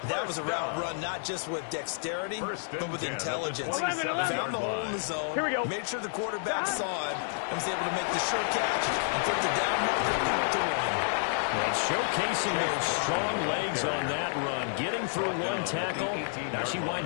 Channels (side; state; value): right; silent; digital silence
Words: That was a route run not just with dexterity, but with intelligence. Found the hole in the zone, made sure the quarterback saw it, and was able to make the sure catch and put the down marker to win. And showcasing those strong legs on that run, getting through 1 tackle. Now she